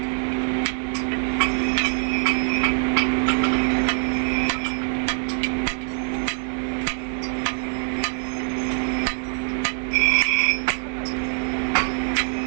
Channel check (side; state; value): left; silent; digital silence